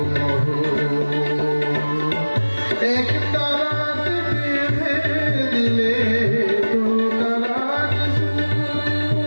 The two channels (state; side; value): inverted; both; correlation -1.00